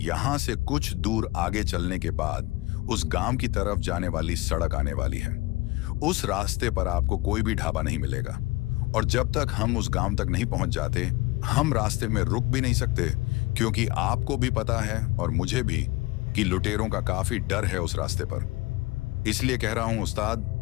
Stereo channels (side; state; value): right; quieter; 20.5 dB